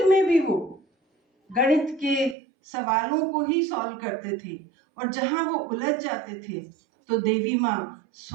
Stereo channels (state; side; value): drops out; left; at 2.4 s